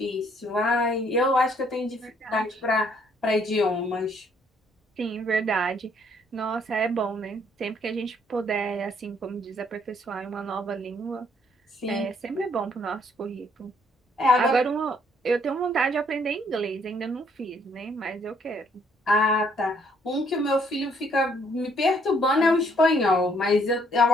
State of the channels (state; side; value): normal; both; correlation 0.66